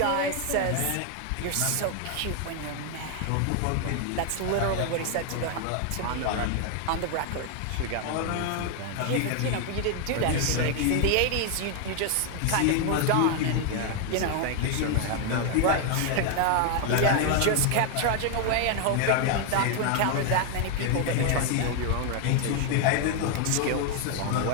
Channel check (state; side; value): different; both; correlation 0.01